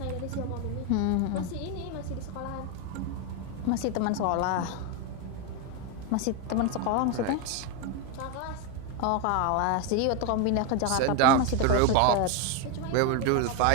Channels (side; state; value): both; different; correlation 0.02